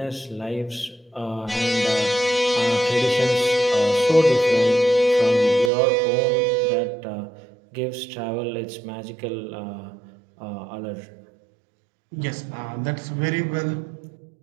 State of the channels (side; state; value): left; drops out; at 5.7 s